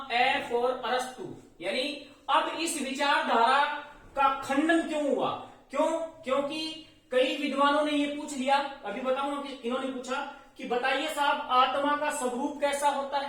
ए फॉर अरस्तु। यानी अब इस विचारधारा का खंडन क्यों हुआ? क्योंकि कई विद्वानों ने ये पूछ लिया, अभी बताऊंगा कि इन्होंने पूछा कि बताइए साहब आत्मा का स्वरूप कैसा होता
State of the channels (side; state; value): both; identical; correlation 1.00